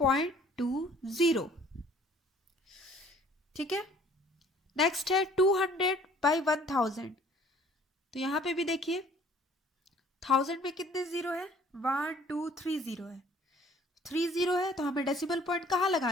ठीक है। नेक्स्ट है 200/1000। तो यहाँ पे भी देखिए 1000 में कितने जीरो है? 1 2 3 जीरो है। 3 जीरो है तो हमें डेसिमल पॉइंट कहाँ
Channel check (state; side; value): normal; both; correlation 0.55